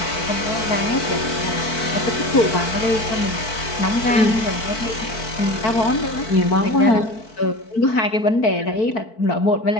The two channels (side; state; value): right; late; 4.5 ms